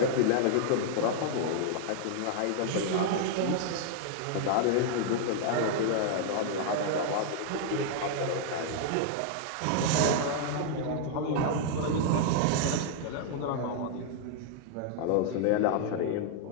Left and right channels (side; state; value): both; different; correlation -0.01